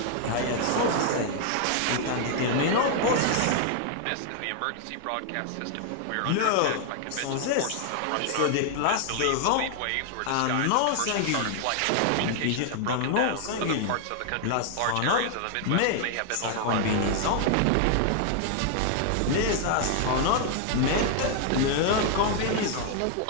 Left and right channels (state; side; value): different; both; correlation 0.00